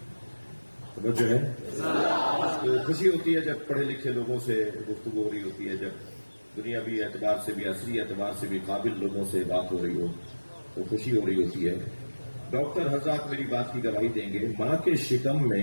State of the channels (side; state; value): both; inverted; correlation -1.00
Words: توجہ ہے. تو خوشی ہوتی ہے جب پڑھے لکھے لوگوں سے گفتگو ہو رہی ہوتی ہے، جب دنیاوی اعتبار سے بھی عصری اعتبار سے بھی قابل لوگوں سے بات ہو رہی ہو تو خوشی ہو رہی ہوتی ہے. ڈاکٹر حضرات میری بات کی گواہی دیں گے. ماں کے شکم میں